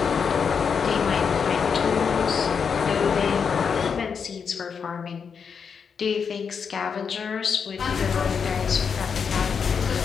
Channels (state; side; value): quieter; right; 6.3 dB